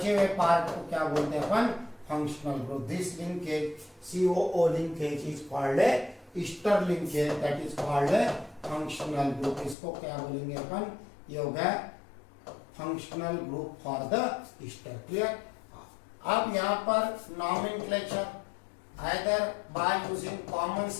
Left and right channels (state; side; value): drops out; right; at 9.8 s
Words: हुए पार्ट को क्या बोलते हैं अपन? Functional group. This linkage COO linkage is called a ester linkage, that is called a functional group. इसको क्या बोलेंगे अपन? ये हो गया functional group for the ester. Clear? अब यहाँ पर nomenclature either by using common